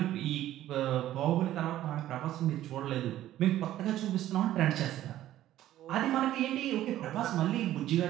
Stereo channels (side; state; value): left; quieter; 13.4 dB